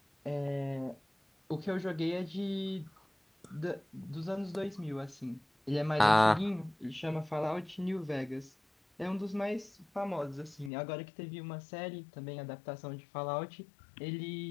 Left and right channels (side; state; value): right; drops out; at 10.7 s